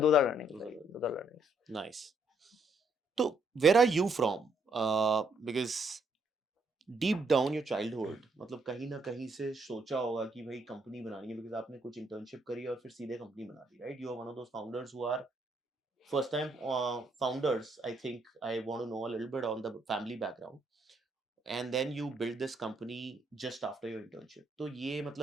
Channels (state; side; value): normal; both; correlation 0.72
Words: are learnings. Those are learnings. Nice. So, where are you from? Because deep down your childhood, मतलब कहीं ना कहीं से सोचा होगा कि भाई company बनानी है, because आपने कुछ internship करी और फिर सीधे कंपनी बना दी, right? You are one of those founders who are first time founders. I think I want to know a little bit on the family background. And then you build this company just after your internship. तो ये